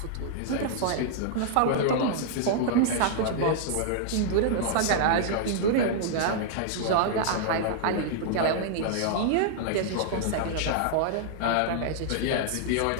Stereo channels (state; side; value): different; both; correlation -0.01